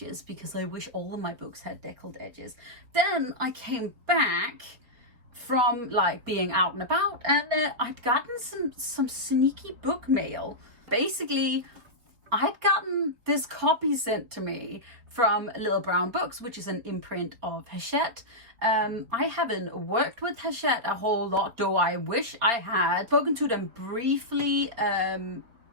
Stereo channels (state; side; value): late; left; 4.5 ms